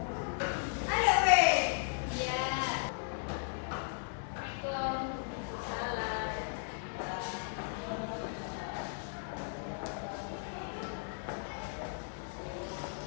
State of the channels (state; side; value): silent; right; 54 dB below the other